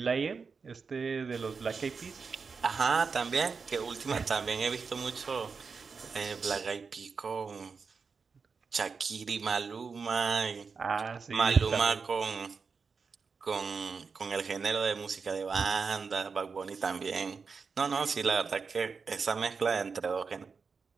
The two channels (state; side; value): quieter; left; 5.2 dB